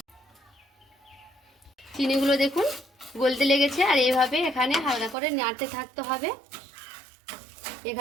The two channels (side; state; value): left; drops out; at 5.2 s